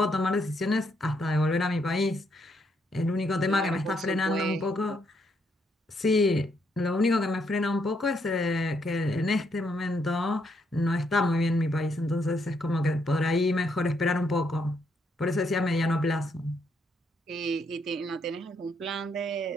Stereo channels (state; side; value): normal; both; correlation 0.75